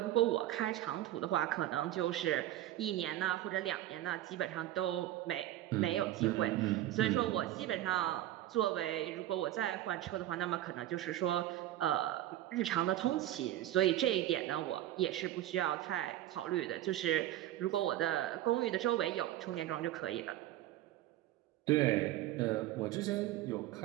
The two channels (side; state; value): left; quieter; 14.0 dB